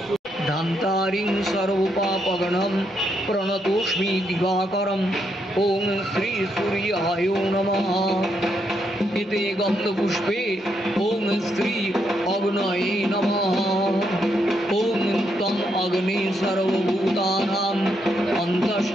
धान्तारिं सर्वपापगणं प्रणतोष्मि दिवाकरं ओम श्री सूर्याय नमः। इते गन्धपुष्पे ओम श्री अग्नये नमः। ओम तम अग्ने सर्वभूतानां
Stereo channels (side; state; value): both; normal; correlation 0.78